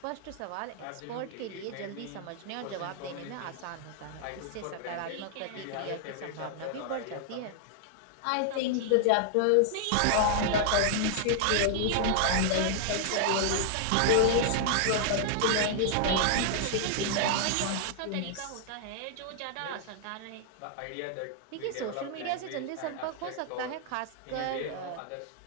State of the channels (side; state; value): both; different; correlation 0.00